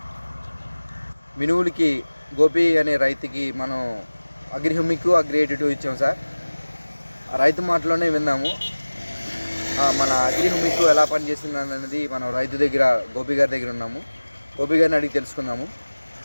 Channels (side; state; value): both; inverted; correlation -1.00